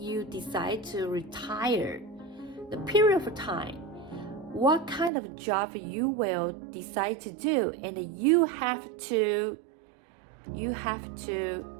decide to retire, the period of time, what kind of job you will decide to do, and you have to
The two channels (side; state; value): left; drops out; at 5.1 s